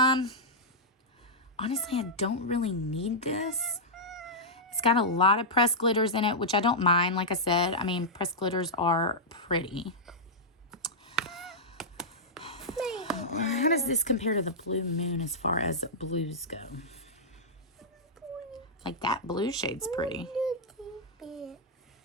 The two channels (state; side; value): normal; both; correlation -0.09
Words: I don't really need this. It's got a lot of pressed glitters in it, which I don't mind. Like I said, I mean, pressed glitters are pretty. How does this compare to the Blue Moon as far as blues go? Like that blue shade's pretty.